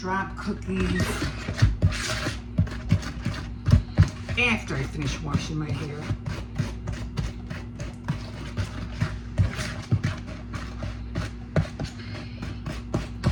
cookies after I finish washing my hair.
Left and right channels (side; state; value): both; identical; correlation 1.00